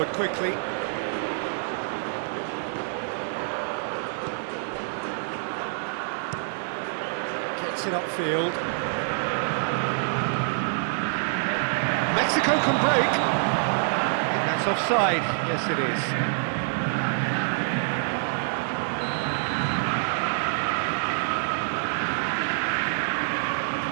quickly. Gets it upfield. Mexico can break. I think that's offside. Yes, it is.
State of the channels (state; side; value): silent; left; digital silence